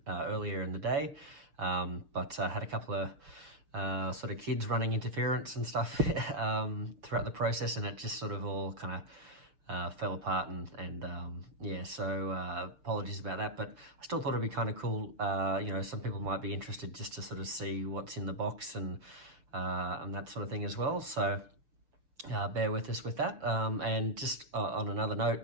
earlier in the day, but I had a couple of sort of kids running interference and stuff throughout the process, and it just sort of all kind of fell apart, and yeah, so apologies about that, but I still thought it'd be kind of cool. You know, some people might be interested just to sort of see what's in the box and that sort of thing as well, so bear with us with that. And just on another note,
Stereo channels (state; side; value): late; left; 6.9 ms